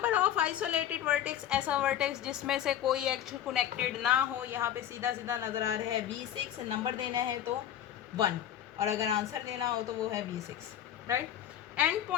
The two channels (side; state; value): right; quieter; 10.7 dB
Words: of isolated vertex, ऐसा वर्टेक्स जिसमें से कोई एक्च कनेक्टेड ना हो, यहाँ पे सीधा सीधा नज़र आ रहा है V6। नंबर देना है तो 1 और अगर आंसर देना हो तो वो है V6, right. And